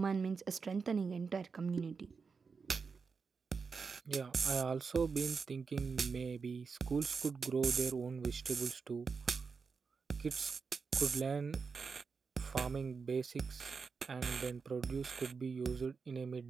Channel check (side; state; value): left; quieter; 5.2 dB